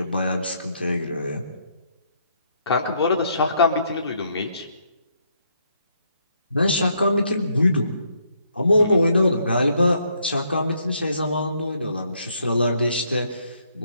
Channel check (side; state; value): both; inverted; correlation -0.72